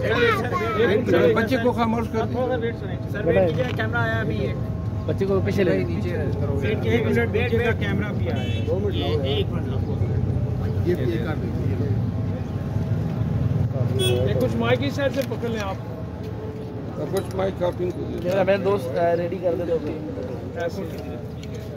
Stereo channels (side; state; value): both; identical; correlation 1.00